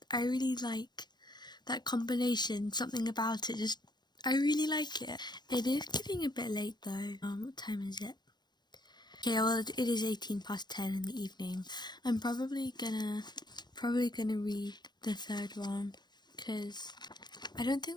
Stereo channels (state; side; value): late; right; 0.21 ms